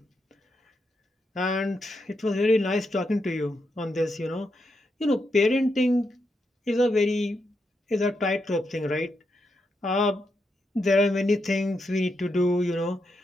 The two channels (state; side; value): normal; both; correlation 0.83